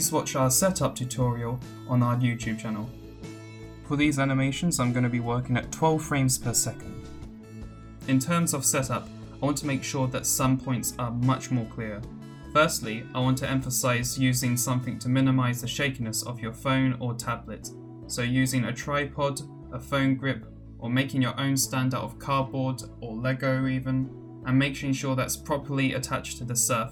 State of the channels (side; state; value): both; identical; correlation 1.00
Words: watch our setup tutorial on our YouTube channel. For these animations, I'm going to be working at 12 frames per second. In terms of setup, I want to make sure that some points are much more clear. Firstly, I want to emphasize using something to minimize the shakiness of your phone or tablet. So using a tripod, a phone grip, or making your own stand out of cardboard or Lego even, and making sure that's properly attached to the